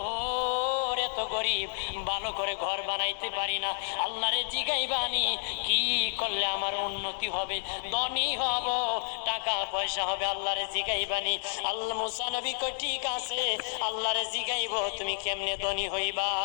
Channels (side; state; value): right; silent; 58 dB below the other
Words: এত গরিব ভালো করে ঘর বানাইতে পারি না। আল্লাহরে জিগাইবানি কি করলে আমার উন্নতি হবে, ধনী হব, টাকা পয়সা হবে, আল্লাহরে জিগাইবানি। আল্লাহ মুসা নবী কয় ঠিক আছে আল্লাহরে জিগাইব তুমি কেমনে ধনী হইবা।